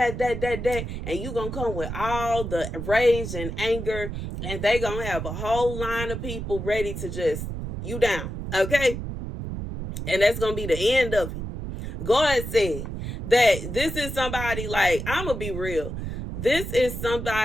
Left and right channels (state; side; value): noise; right; rumble, 6 dB below the sound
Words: and you gonna come with all the rage and anger, and they gonna have a whole line of people ready to just you down, okay? And that's gonna be the end of it. God said that this is somebody, like, I'm gonna be real. This is